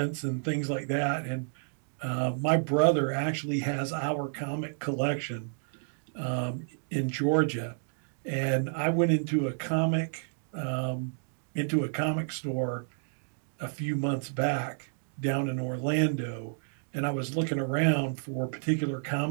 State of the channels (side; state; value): left; silent; digital silence